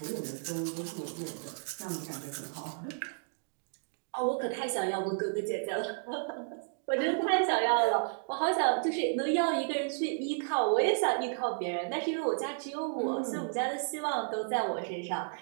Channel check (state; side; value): silent; left; digital silence